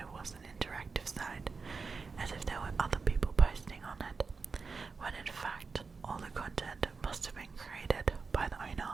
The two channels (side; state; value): left; quieter; 4.7 dB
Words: was an interactive site, as if there were other people posting on it, when in fact all the content must have been created by the